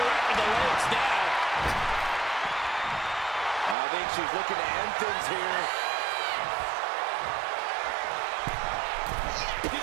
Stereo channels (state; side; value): drops out; left; at 3.8 s